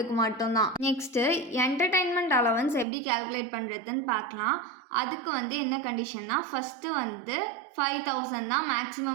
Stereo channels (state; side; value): drops out; left; at 2.9 s